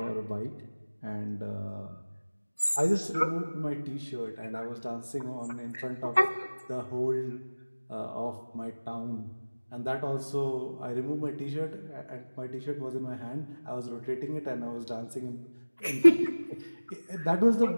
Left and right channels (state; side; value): inverted; both; correlation -1.00